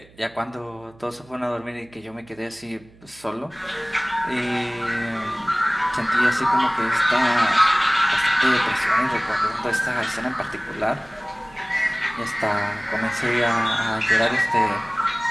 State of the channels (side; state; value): right; noise; hum, 26 dB below the sound